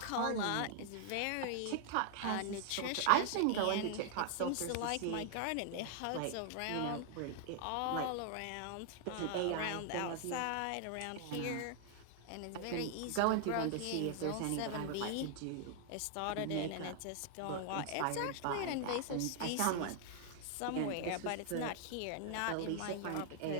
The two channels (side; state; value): both; different; correlation 0.00